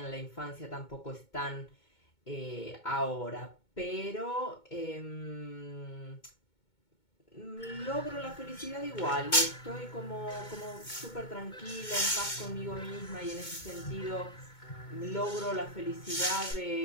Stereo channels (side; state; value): right; late; 2.2 ms